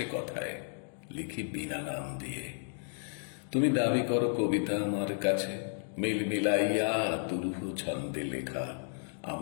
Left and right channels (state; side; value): silent; right; 56 dB below the other